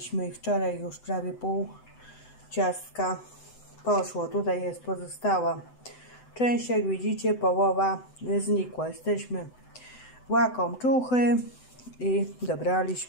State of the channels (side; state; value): right; late; 7.9 ms